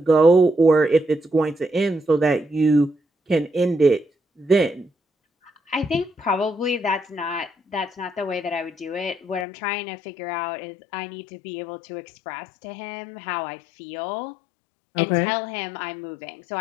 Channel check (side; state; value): right; drops out; at 9.5 s